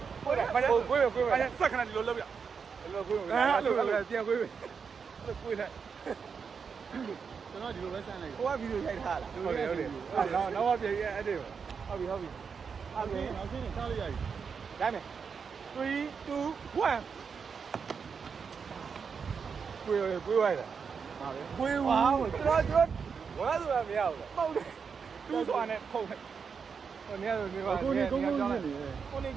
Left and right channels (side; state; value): left; quieter; 6.0 dB